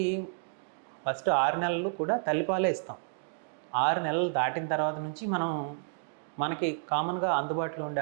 ఫస్ట్ 6 నెలలు కూడా తల్లిపాలే ఇస్తాం. 6 నెలలు దాటిన తర్వాత నుంచి మనకి కామన్గా అందుబాటులో ఉండే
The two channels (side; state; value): left; silent; digital silence